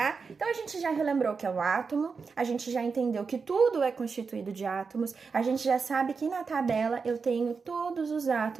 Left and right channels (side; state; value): left; quieter; 5.1 dB